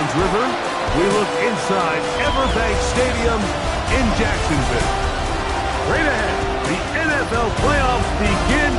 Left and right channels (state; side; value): identical; both; correlation 1.00